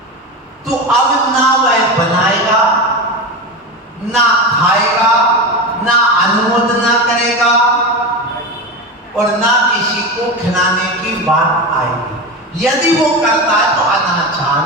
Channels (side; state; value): both; normal; correlation 0.22